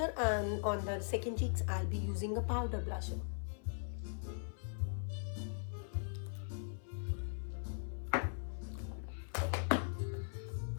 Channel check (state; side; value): silent; right; 51 dB below the other